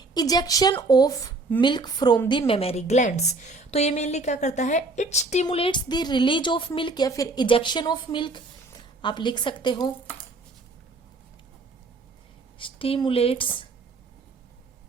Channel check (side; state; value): left; quieter; 3.4 dB